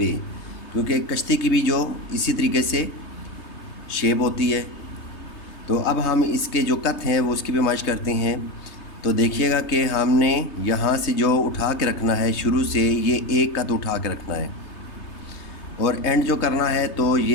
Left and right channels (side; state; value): right; late; 3.2 ms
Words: क्योंकि कश्ती की भी जो इसी तरीके से शेप होती है। तो अब हम इसके जो कत हैं वो उसकी भी माइश करते हैं। तो देखिएगा कि हमने यहाँ से जो उठा के रखना है, शुरू से ये एक कत उठा के रखना है और एंड जो करना है तो